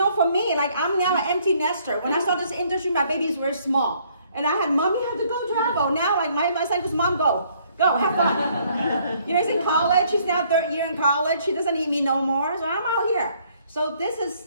for me, like, I'm now an empty nester. When I started this industry, my babies were small. And I had, mommy had to go travel. Now, like, my son goes, mom, go, have fun. You know, he's in college. He's now third year in college. He doesn't need me no more. So I'm out here. So this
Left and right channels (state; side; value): inverted; both; correlation -0.65